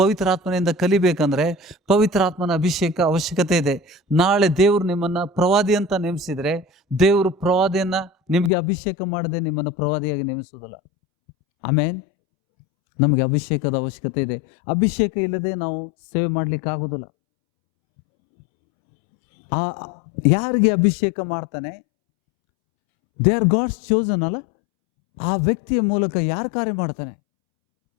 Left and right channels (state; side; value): drops out; right; at 8.5 s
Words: ಕಲಿಬೇಕಂದ್ರೆ ಪವಿತ್ರಾತ್ಮನ ಅಭಿಷೇಕ ಅವಶ್ಯಕತೆ ಇದೆ. ನಾಳೆ ದೇವರು ನಿಮ್ಮನ್ನ ಪ್ರವಾದಿ ಅಂತ ನೇಮಿಸಿದ್ರೆ ದೇವರು ಪ್ರವಾದಿಯನ್ನ ನಿಮಗೆ ಅಭಿಷೇಕ ಮಾಡದೆ ನಿಮ್ಮನ್ನು ಪ್ರವಾದಿಯಾಗಿ ನೇಮಿಸುವುದಿಲ್ಲ. ಆಮೇನ್. ನಮಗೆ ಅಭಿಷೇಕದ ಅವಶ್ಯಕತೆ ಇದೆ. ಅಭಿಷೇಕ ಇಲ್ಲದೆ ನಾವು ಸೇವೆ ಮಾಡ್ಲಿಕ್ಕೆ ಆಗುದಿಲ್ಲ. ಯಾರಿಗೆ ಅಭಿಷೇಕ ಮಾಡ್ತಾನೆ? ದೇ ಆರ್ ಗಾಡ್ಸ್ ಚೋಸನ್ ಅಲ್ಲ. ಆ ವ್ಯಕ್ತಿಯ ಮೂಲಕ ಯಾರು ಕಾರ್ಯ ಮಾಡ್ತಾನೆ?